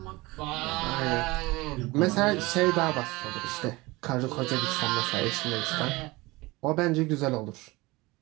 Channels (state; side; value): quieter; left; 22.2 dB